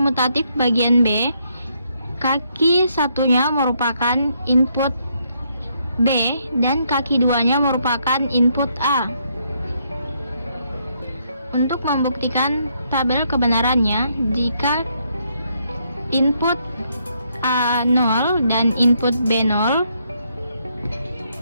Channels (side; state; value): both; inverted; correlation -0.74